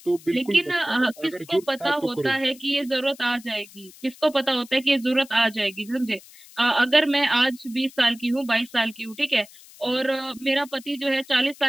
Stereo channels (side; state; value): left; noise; hiss, 22 dB below the sound